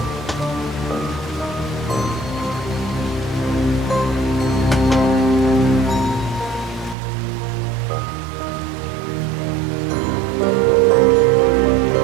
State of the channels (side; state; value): left; drops out; at 7.0 s